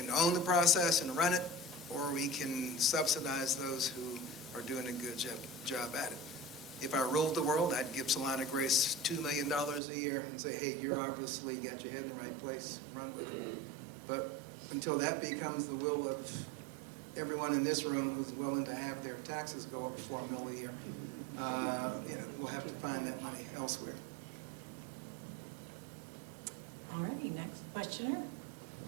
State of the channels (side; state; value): left; drops out; at 9.8 s